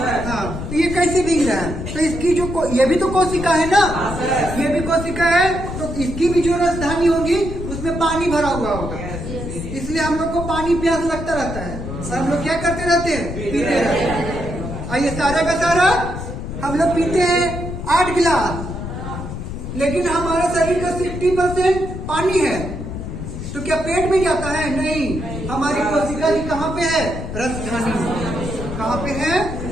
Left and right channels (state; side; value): noise; left; rumble, 7 dB below the sound